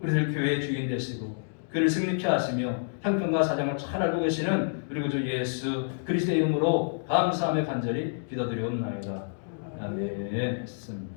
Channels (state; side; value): silent; right; digital silence